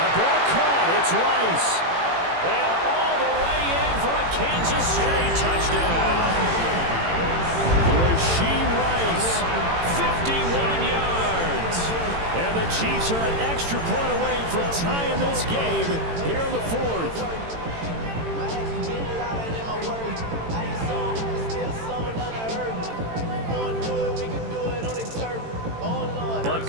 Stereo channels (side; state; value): left; late; 18 ms